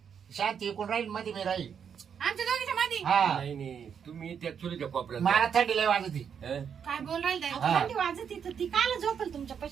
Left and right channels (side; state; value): left; quieter; 7.5 dB